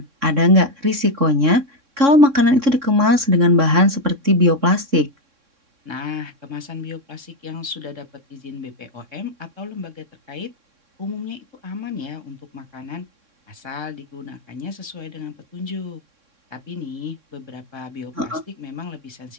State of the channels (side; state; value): left; late; 3.6 ms